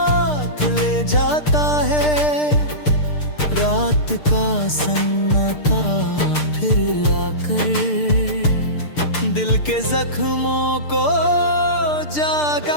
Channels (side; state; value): right; late; 6.7 ms